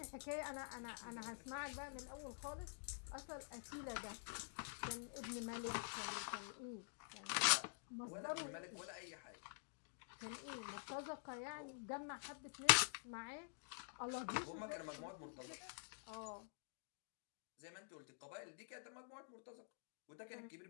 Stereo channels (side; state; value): right; silent; digital silence